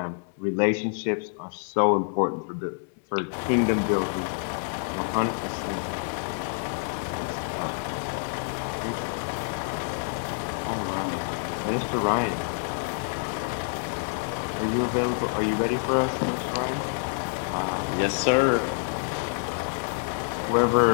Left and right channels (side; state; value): right; silent; digital silence